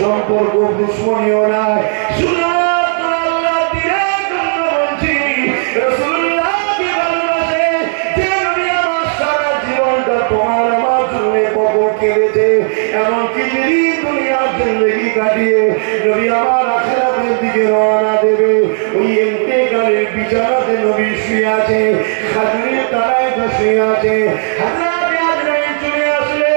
সম্পর্ক দুশ্মনীয় নাই। এমনকি দুনিয়ার জিন্দেগি কাটিয়ে নবী আমার আখিরাতের দিকে রওনা দেবে, ওই ইন্তেকালের বিছানাতে নবী শুয়ে আছে, খাজুরের তলায় শুয়ে আছে। হযরত আজরাইল চলে আসলে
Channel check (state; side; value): silent; left; digital silence